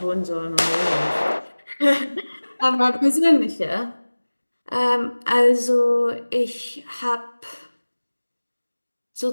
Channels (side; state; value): both; inverted; correlation -1.00